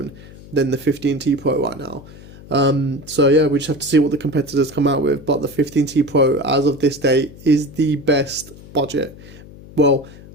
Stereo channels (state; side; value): noise; left; hum, 19 dB below the sound